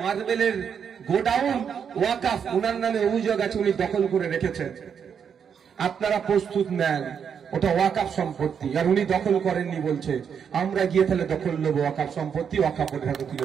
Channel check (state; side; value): quieter; left; 7.3 dB